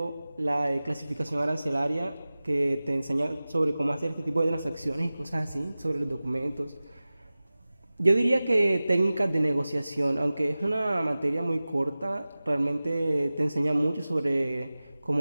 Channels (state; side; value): inverted; both; correlation -0.97